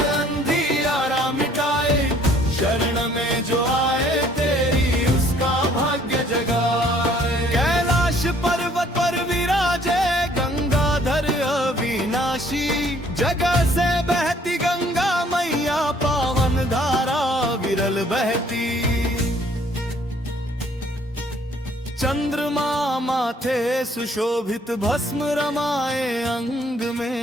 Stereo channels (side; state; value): both; normal; correlation 0.60